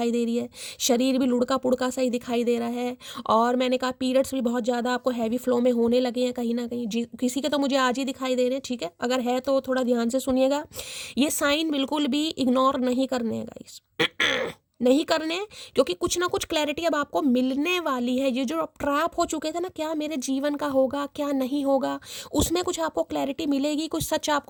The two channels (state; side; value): identical; both; correlation 1.00